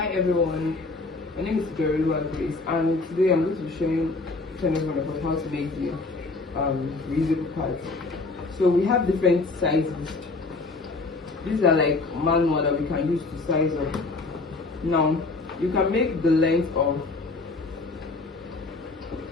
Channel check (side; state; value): right; quieter; 3.5 dB